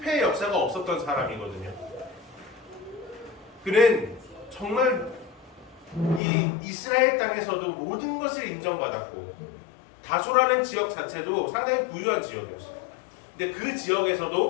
역사가 없었던 사람이거든요. 그는 정말 이 이스라엘 땅에서도 모든 것을 인정받았고, 다소라는 지역 자체도 상당히 부유한 지역이었어요. 근데 그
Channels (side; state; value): right; drops out; at 6.2 s